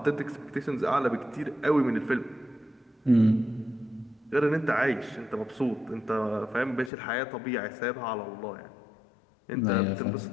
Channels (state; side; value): drops out; right; at 6.9 s